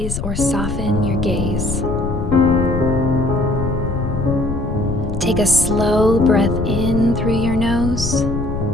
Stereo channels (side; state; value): left; noise; rumble, 4 dB below the sound